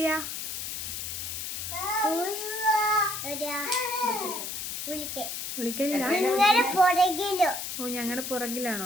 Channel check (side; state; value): left; noise; hiss, 5 dB below the sound